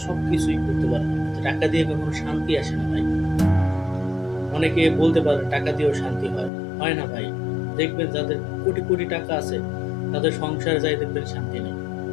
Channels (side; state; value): right; drops out; at 6.5 s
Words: সবকিছুই করতে পারবেন, কিন্তু টাকা দিয়ে কখনো শান্তি আসে না ভাই। অনেকে বলতে পারে টাকা দিয়েও শান্তি হয়, হয় না ভাই। দেখবেন যাদের কোটি কোটি টাকা আছে, তাদের সংসারে যাই দেখবেন শান্তি নেই।